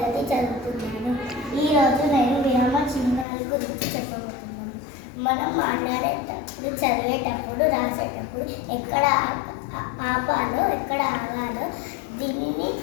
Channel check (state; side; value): drops out; right; at 3.2 s